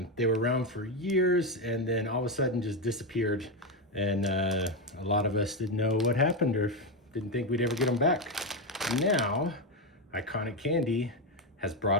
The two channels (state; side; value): normal; both; correlation 0.09